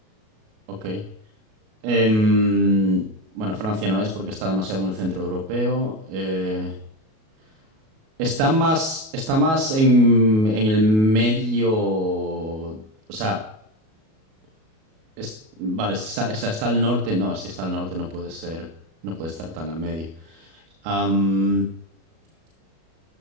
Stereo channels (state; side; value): late; left; 37 ms